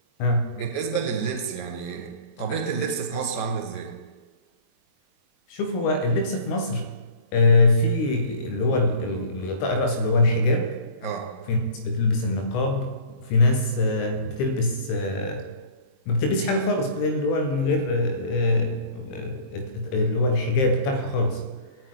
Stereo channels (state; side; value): late; right; 22 ms